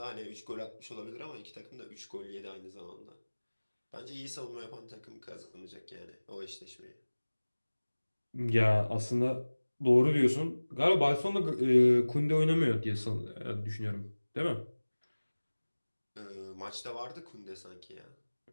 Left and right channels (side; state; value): both; inverted; correlation -1.00